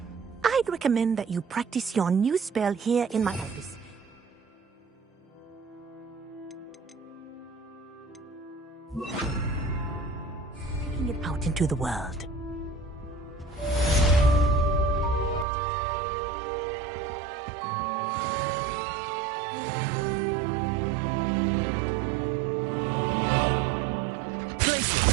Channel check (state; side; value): drops out; left; at 15.5 s